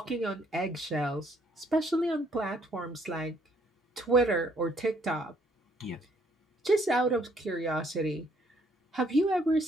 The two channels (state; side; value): normal; both; correlation 0.66